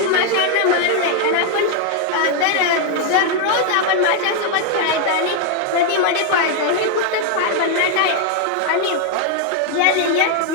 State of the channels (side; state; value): both; different; correlation 0.00